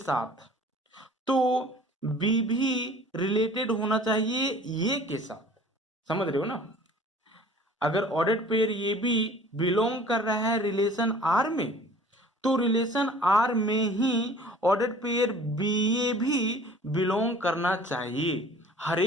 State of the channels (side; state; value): both; normal; correlation 0.48